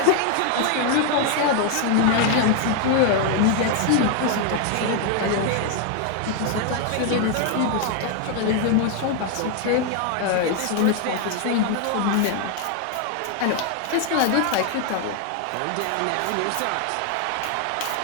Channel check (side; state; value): both; different; correlation 0.01